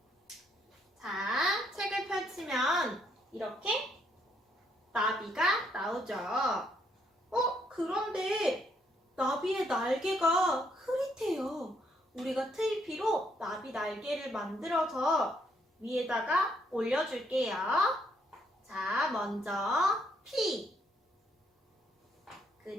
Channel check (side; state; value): both; normal; correlation 0.72